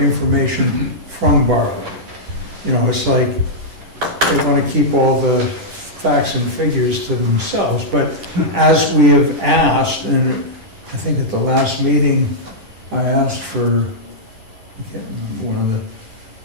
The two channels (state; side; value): late; left; 10 ms